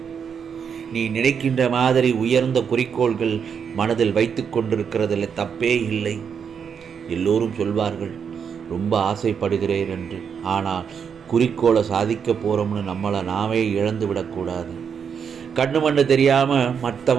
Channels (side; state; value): left; quieter; 7.0 dB